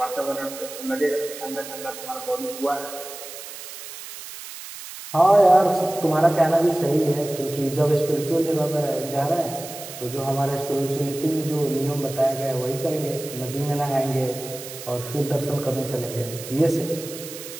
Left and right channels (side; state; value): right; noise; hiss, 12 dB below the sound